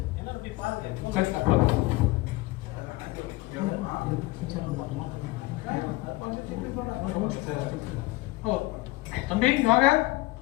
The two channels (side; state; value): right; quieter; 20.3 dB